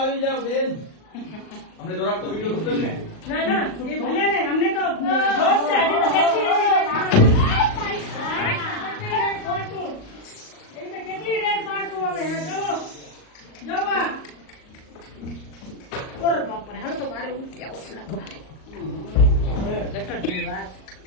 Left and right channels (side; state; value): right; late; 38 ms